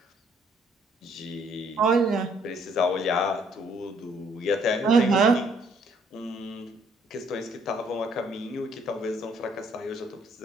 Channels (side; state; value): both; normal; correlation 0.65